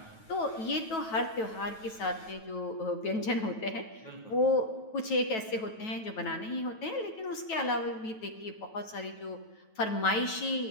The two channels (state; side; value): late; right; 9.2 ms